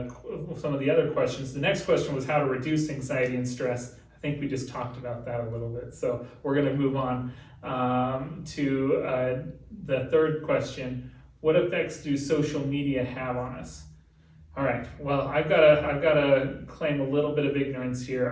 some of the other questions. The next question was how to reduce anxiety and stress. I think we just talked about that a little bit. So we're going to move on to the third question. What effects do social media have on us? All right, well, I've got to claim a little bit of ignorance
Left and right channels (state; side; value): identical; both; correlation 1.00